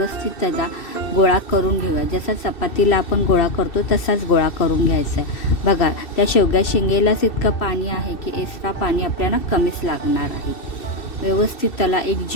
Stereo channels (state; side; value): late; right; 2.7 ms